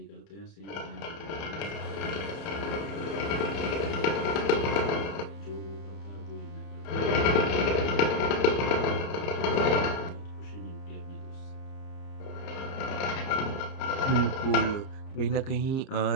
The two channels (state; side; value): late; right; 30 ms